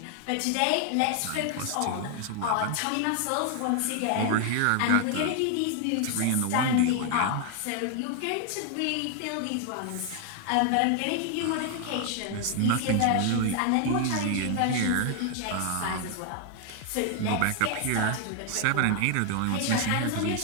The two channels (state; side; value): different; both; correlation 0.00